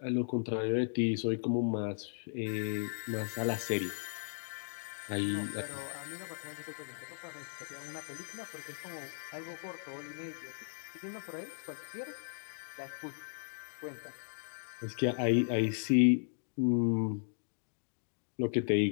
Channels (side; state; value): right; silent; digital silence